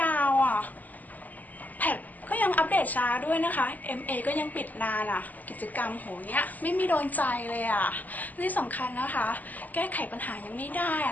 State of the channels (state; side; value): late; right; 0.081 ms